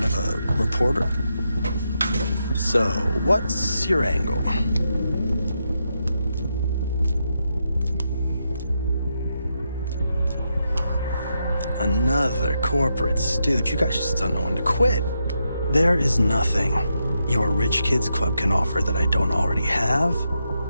of a reporter? So, what's your angle? Another corporate stooge. You guys just don't know when to quit. There is nothing your rich kids club can offer that I don't already have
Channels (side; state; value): both; inverted; correlation -0.83